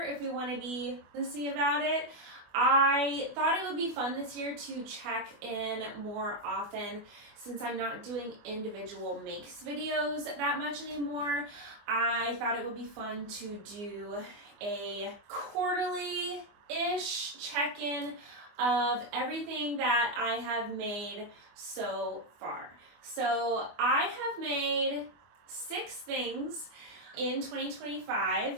if we want to be honest about it. I thought it would be fun this year to check in more often since I'm not doing individual makes videos that much anymore. I thought it would be fun to do a quarterly-ish check-in of everything that I have made so far. So I have made 6 things in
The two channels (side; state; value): left; late; 24 ms